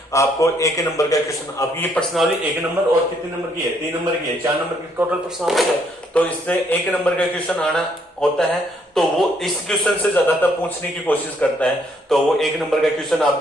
आपको 1 नंबर का क्वेश्चन, आपकी ये पर्सनालिटी 1 नंबर और कितने नंबर की है 3 नंबर की है, 4 नंबर की टोटल पर्सनालिटी है, तो इससे 1 नंबर का क्वेश्चन आना होता है, तो वो इस क्वेश्चन से ज्यादातर पूछने की कोशिश करता है। तो वो 1 नंबर का क्वेश्चन आप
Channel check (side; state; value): both; normal; correlation 0.69